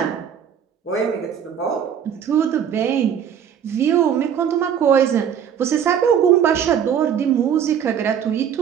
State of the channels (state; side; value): quieter; left; 8.5 dB